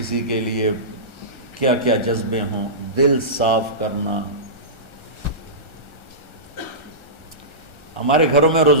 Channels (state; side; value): late; right; 1.4 ms